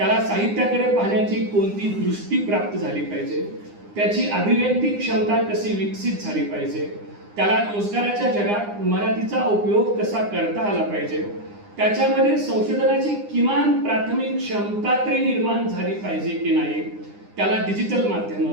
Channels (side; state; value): left; late; 9.8 ms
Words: साहित्याकडे पाहण्याची कोणती दृष्टी प्राप्त झाली पाहिजे, त्याची अभिव्यक्ती क्षमता कशी विकसित झाली पाहिजे, त्याला रोजगाराच्या जगात मराठीचा उपयोग कसा करता आला पाहिजे, त्याच्यामध्ये संशोधनाची किमान प्राथमिक क्षमता तरी निर्माण झाली पाहिजे की नाही, त्याला डिजिटल माध्यम,